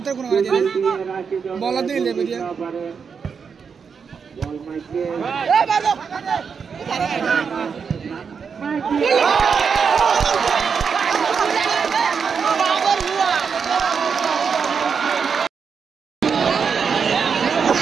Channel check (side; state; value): left; quieter; 6.1 dB